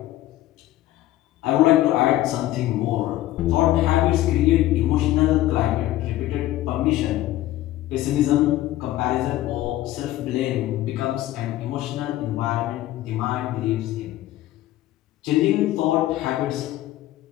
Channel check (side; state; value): right; quieter; 15.0 dB